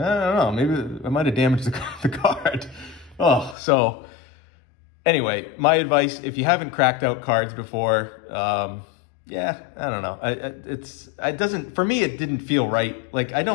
don't know, maybe I might have damaged the card. Oh, so anyway, my advice, if you haven't cracked out cards before, yeah, I don't know. For me, it didn't feel right. Like, I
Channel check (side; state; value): right; drops out; at 3.6 s